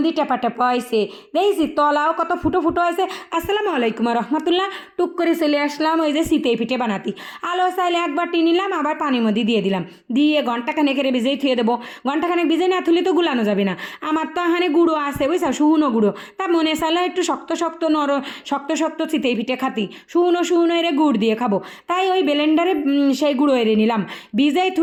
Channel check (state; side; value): identical; both; correlation 1.00